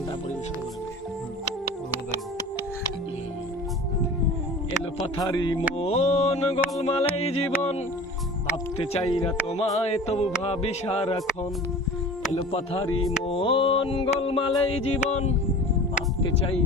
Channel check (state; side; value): normal; both; correlation 0.39